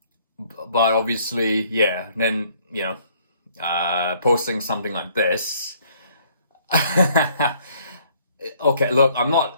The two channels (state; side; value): inverted; both; correlation -0.62